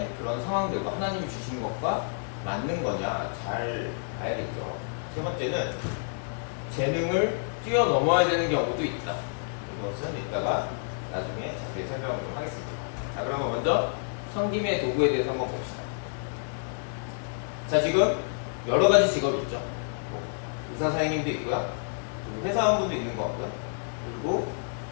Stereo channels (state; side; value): silent; right; digital silence